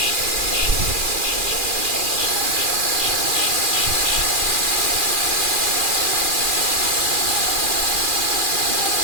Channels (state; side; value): late; left; 2.4 ms